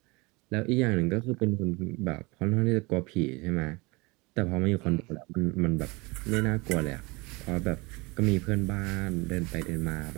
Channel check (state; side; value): quieter; left; 25.7 dB